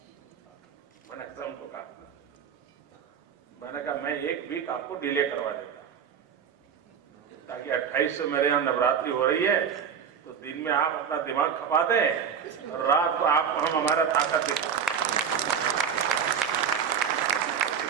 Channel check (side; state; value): left; quieter; 7.4 dB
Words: मैंने ऐसा उनको कहा, मैंने कहा मैं 1 वीक आपको डिले करवा देता ताकि 28 से मेरे यहां नवरात्रि हो रही है, तो दिन में आप अपना दिमाग खपा दें और रात को आपको हम हमारा ताकत दिखा।